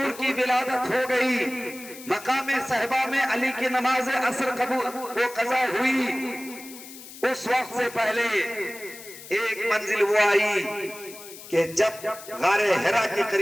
کی ولادت ہو گئی, مقام صحبہ میں علی کی نماز عصر وہ قضا ہوئی, اس وقت سے پہلے ایک منزل وہ آئی کہ جب غار حرا کے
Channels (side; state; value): left; noise; hiss, 16 dB below the sound